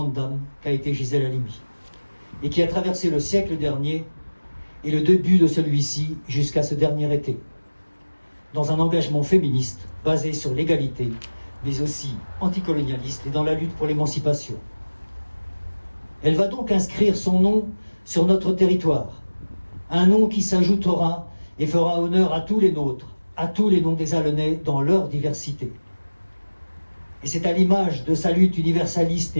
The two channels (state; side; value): inverted; both; correlation -1.00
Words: dame qu'a été Gisèle Halimi, et qui a traversé le siècle dernier et le début de celui-ci jusqu'à ce dernier été, dans un engagement féministe basé sur l'égalité, mais aussi anticolonialiste et dans la lutte pour l'émancipation. Elle va donc inscrire son nom sur notre territoire, un nom qui s'ajoutera et fera honneur à tous les nôtres, à tous les noms des Allenais dans leur diversité. Et c'est à l'image de sa lutte universaliste